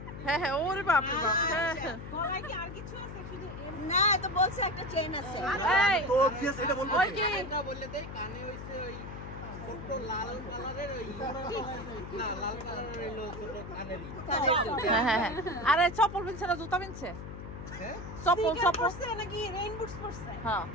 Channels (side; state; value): left; noise; hum, 10 dB below the sound